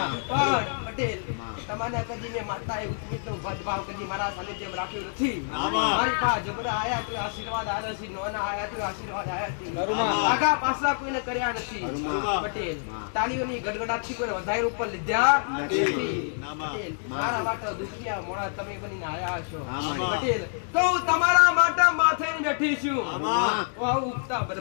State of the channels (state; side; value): silent; right; digital silence